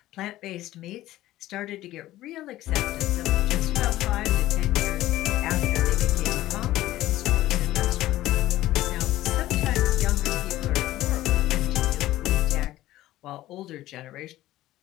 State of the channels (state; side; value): quieter; right; 15.4 dB